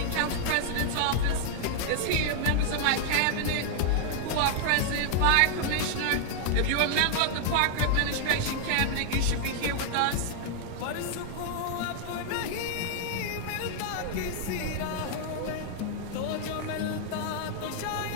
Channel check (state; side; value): different; both; correlation -0.01